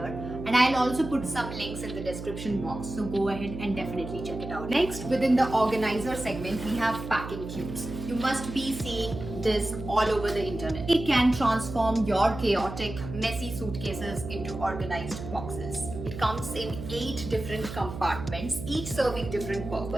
and I'll also put some links in the description box, so go ahead and definitely check it out. Next, within the organizer segment, we have packing cubes. You must be seeing this all over the internet. It can transform your chaotic, messy suitcases into organized boxes. It comes in 8 different compartments, each serving different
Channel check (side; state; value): right; noise; hum, 9 dB below the sound